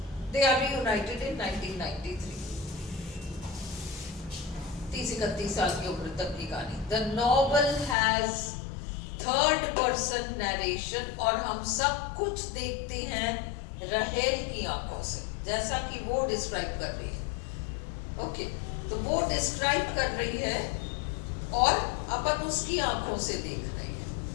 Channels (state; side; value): drops out; right; at 8.0 s